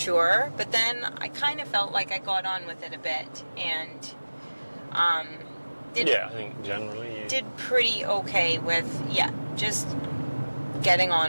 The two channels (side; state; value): both; inverted; correlation -1.00